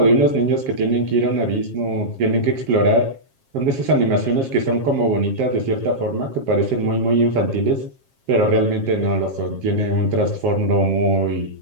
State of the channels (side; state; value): left; late; 7.4 ms